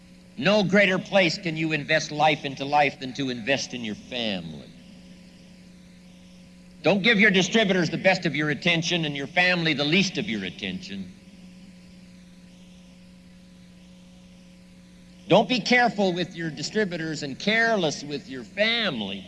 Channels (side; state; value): both; identical; correlation 1.00